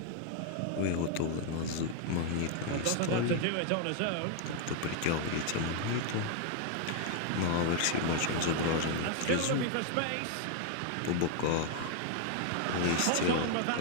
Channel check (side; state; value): both; different; correlation 0.00